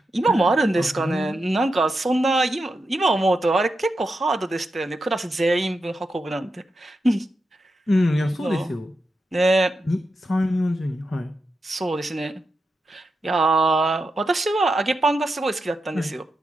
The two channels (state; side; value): normal; both; correlation 0.87